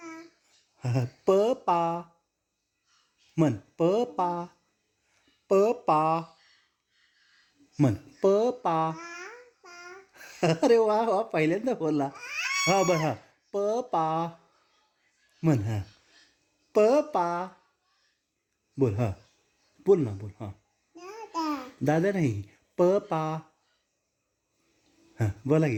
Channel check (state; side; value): identical; both; correlation 1.00